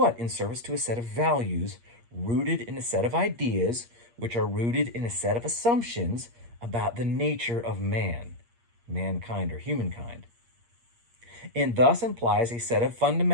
In service to a set of values rooted in a set of ideas, which are rooted in a set of assumptions about the nature of man, mankind, or humankind. And thus implies a set of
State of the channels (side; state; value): left; late; 8.5 ms